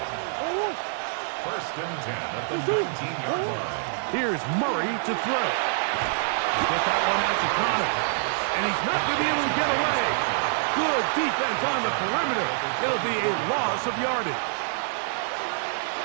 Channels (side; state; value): left; silent; digital silence